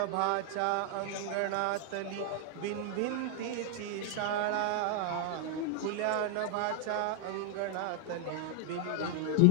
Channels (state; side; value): different; both; correlation 0.00